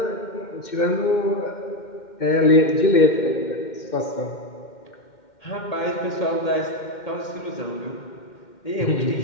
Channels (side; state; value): right; late; 2.1 ms